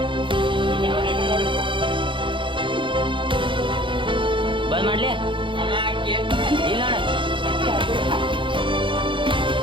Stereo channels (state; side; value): late; left; 0.24 ms